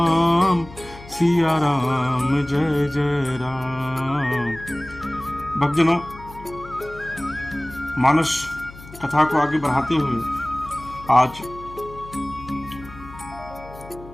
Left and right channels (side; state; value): left; noise; hum, 17 dB below the sound